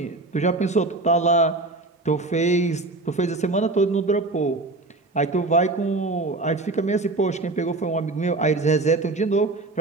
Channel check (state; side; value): quieter; left; 3.1 dB